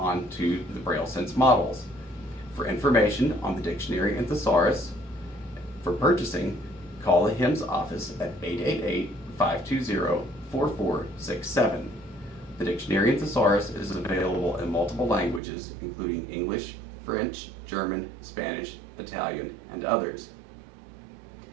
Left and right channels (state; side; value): drops out; left; at 15.4 s